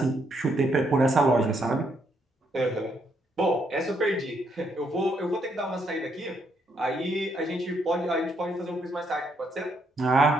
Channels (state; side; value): normal; both; correlation 0.74